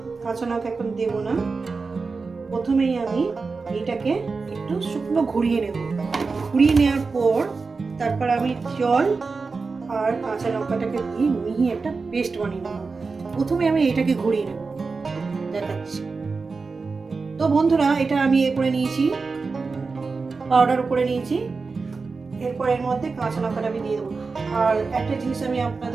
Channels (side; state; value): left; quieter; 4.4 dB